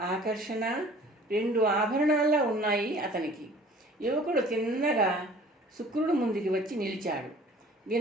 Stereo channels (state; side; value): normal; both; correlation 0.49